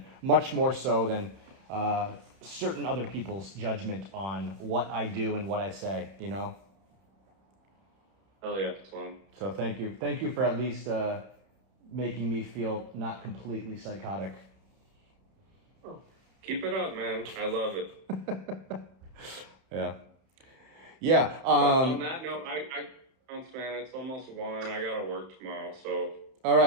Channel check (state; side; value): late; left; 31 ms